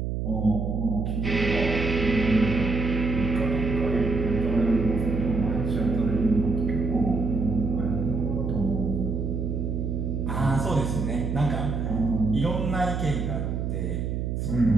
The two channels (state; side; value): noise; right; hum, 2 dB below the sound